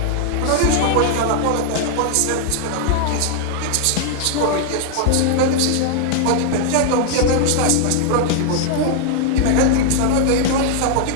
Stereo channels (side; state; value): both; different; correlation 0.00